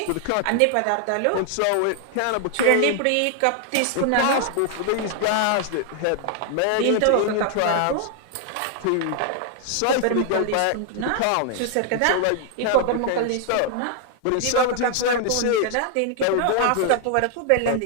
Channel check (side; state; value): both; different; correlation 0.00